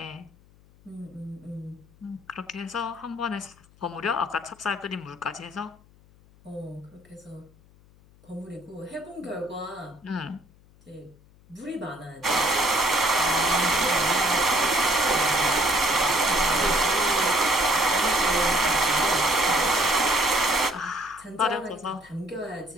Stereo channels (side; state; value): left; noise; hum, 28 dB below the sound